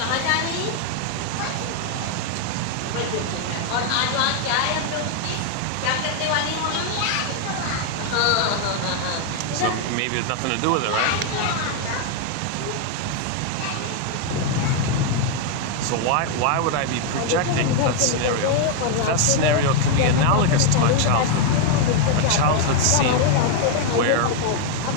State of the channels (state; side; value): different; both; correlation 0.00